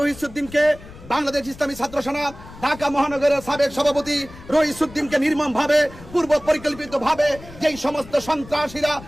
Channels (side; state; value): left; noise; rumble, 18 dB below the sound